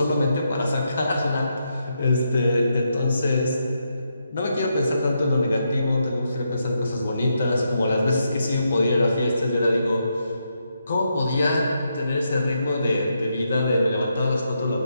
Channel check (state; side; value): inverted; both; correlation -0.81